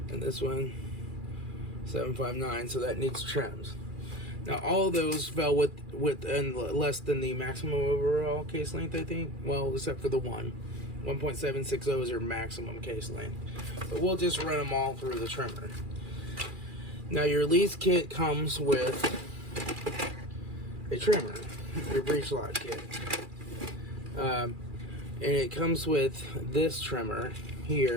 And this one 759, so that needs trims. Now all of those fell within less than the maximum overall case length, I think. Well, except for the 1.760 is your maximum case length. But we'll just run them all through the trimmer. Now your lease kit comes with a trimmer, your breech lock kit. And it comes with this trimmer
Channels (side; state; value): left; late; 2.4 ms